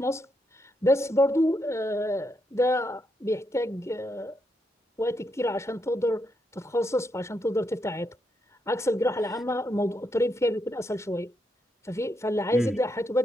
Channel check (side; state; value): both; normal; correlation 0.80